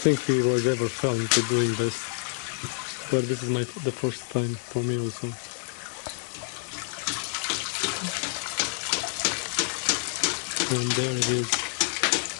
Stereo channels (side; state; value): right; silent; 60 dB below the other